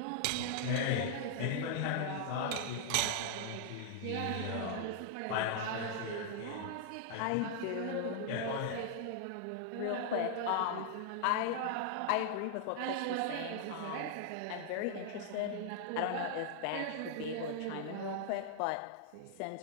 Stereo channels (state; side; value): different; both; correlation -0.01